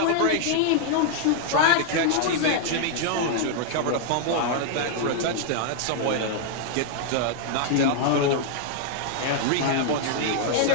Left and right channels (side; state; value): both; different; correlation -0.01